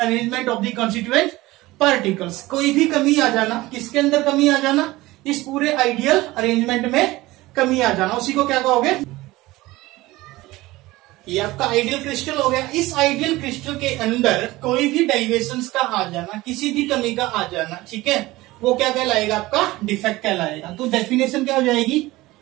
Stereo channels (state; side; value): quieter; left; 19.1 dB